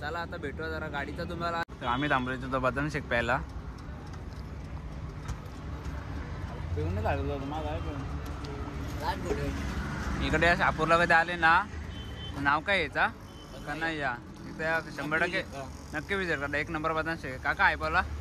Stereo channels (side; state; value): both; identical; correlation 1.00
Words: आता भेटूया जरा गाडीचं तुम्हाला. आम्ही थांबलो तो बदन शेक प्यायला. पिऊन लागलो माझा. इकडे शापूरला कधी आले ना, नाव काय याचा का नाही या इथे 100% नक्की विजिट करा. 1 नंबर बदन शेक. काका आहे बोला.